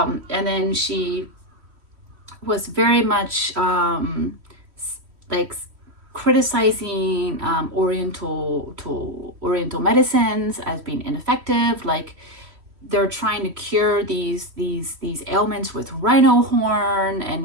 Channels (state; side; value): late; left; 3.1 ms